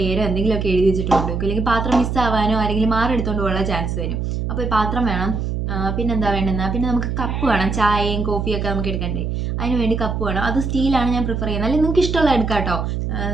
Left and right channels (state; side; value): noise; right; hum, 2 dB below the sound